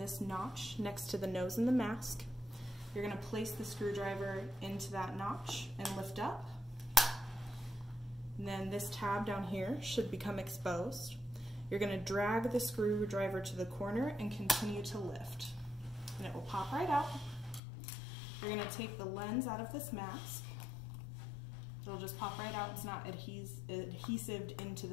notch next to the nose in the mask. You're going to place the screwdriver into that notch and lift up. And then this tab down here should become exposed. You're going to drag the screwdriver to the corner and continue to lift. And it will pop right out. You're going to take the lens out of this mask. It'll just pop right out. It's not adhesived into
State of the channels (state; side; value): drops out; right; at 17.6 s